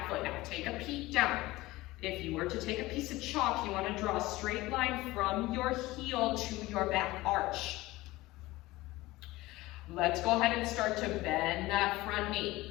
foot. Now take a peek down. If you were to take a piece of chalk, you want to draw a straight line from your heel to your back arch. Let's go ahead and start to bend that front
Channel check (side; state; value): right; quieter; 19.1 dB